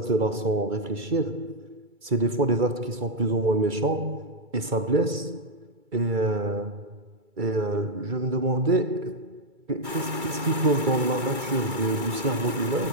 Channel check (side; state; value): left; late; 2.3 ms